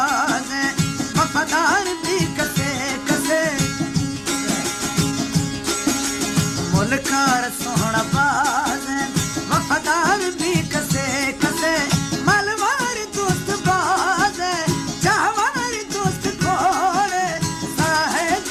वफादार भी कसे कसे। मुलकार सोहना बाज वफादार भी कसे कसे। मलवार दोस्त बाज चाहवार दोस्त खोड़े साहेब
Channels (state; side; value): identical; both; correlation 1.00